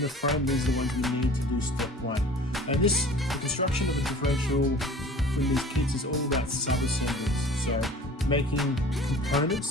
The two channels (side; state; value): both; normal; correlation 0.45